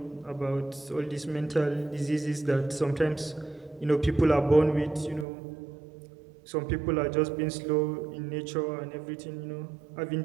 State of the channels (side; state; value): left; drops out; at 5.2 s